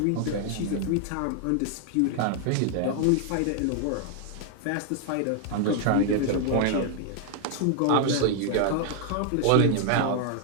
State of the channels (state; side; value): different; both; correlation 0.00